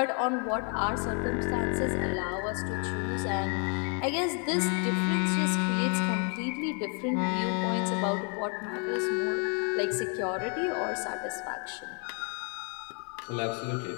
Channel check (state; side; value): quieter; right; 38.6 dB